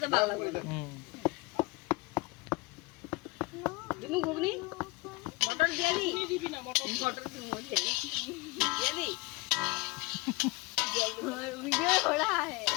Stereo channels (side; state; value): right; quieter; 23.8 dB